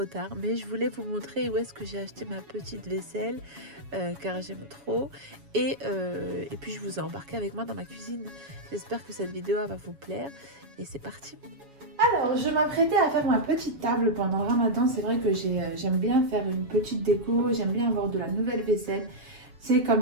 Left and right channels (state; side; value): late; left; 7.2 ms